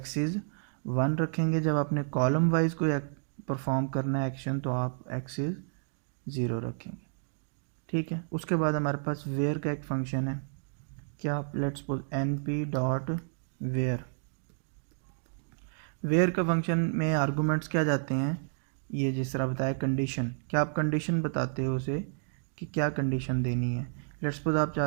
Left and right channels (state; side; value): silent; left; digital silence